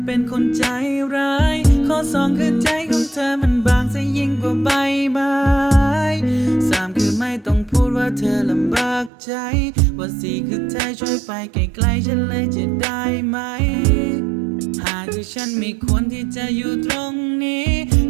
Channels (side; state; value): left; drops out; at 9.1 s